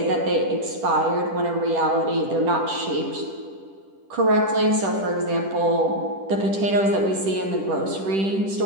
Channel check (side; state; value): left; late; 10 ms